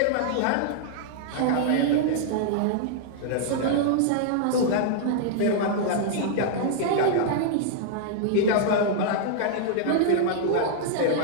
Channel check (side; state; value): both; different; correlation -0.01